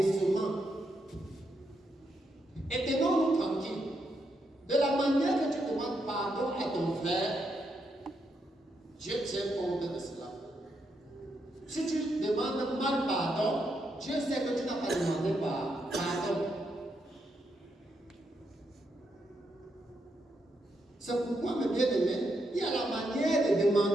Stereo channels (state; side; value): normal; both; correlation 0.81